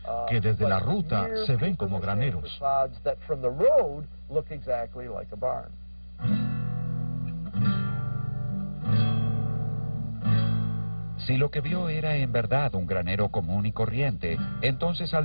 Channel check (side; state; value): both; inverted; correlation -1.00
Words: que desde la ruta se ven como graneros. Si lo que vio era en verdad un granero común y corriente, entonces al